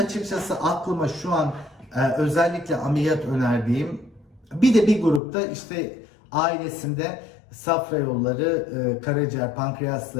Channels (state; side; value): drops out; right; at 5.2 s